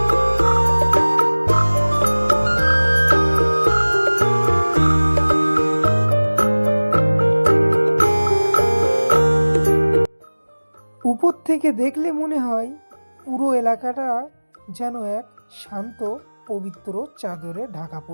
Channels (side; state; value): both; inverted; correlation -1.00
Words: উপর থেকে দেখলে মনে হয় পুরো এলাকাটা যেন এক শান্ত পবিত্র চাদরে ঢাকা